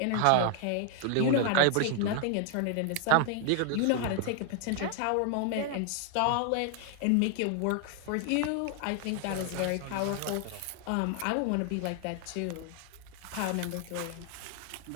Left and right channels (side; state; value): both; different; correlation 0.00